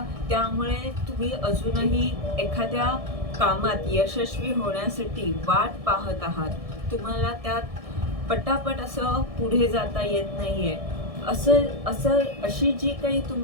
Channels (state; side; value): late; left; 1.6 ms